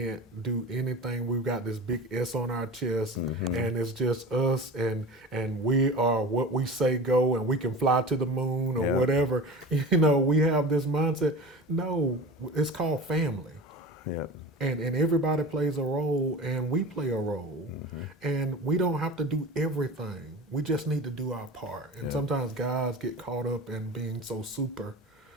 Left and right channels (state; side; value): normal; both; correlation 0.34